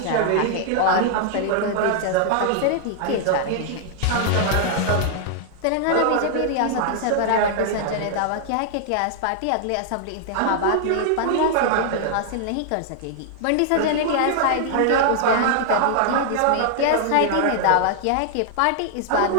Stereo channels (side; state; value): both; different; correlation -0.01